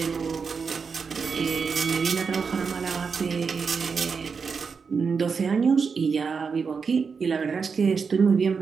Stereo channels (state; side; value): quieter; left; 5.5 dB